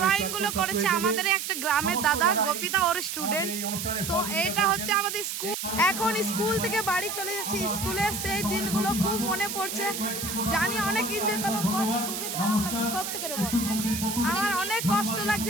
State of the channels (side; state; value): right; noise; hiss, 5 dB below the sound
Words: গুলো করেছে আমাদের একটা গ্রামের দাদা গোপিতা ওর স্টুডেন্ট। তো এটা হচ্ছে আমাদের স্কুল। এখন স্কুল থেকে বাড়ি চলে যাচ্ছি। স্কুলের সেই দিনগুলো খুব মনে পড়ছে, জানি অনেক এনজয় করলাম, খুবই খারাপ লাগছে সত্যি করে বল। আমার অনেক কষ্ট